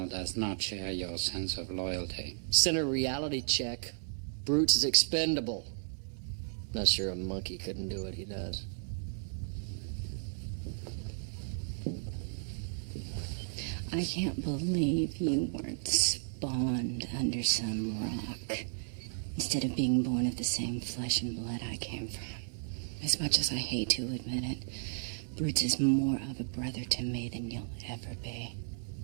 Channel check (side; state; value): left; silent; 55 dB below the other